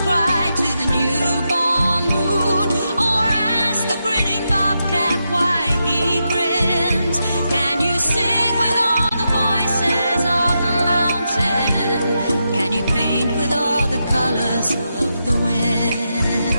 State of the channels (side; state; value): both; inverted; correlation -0.86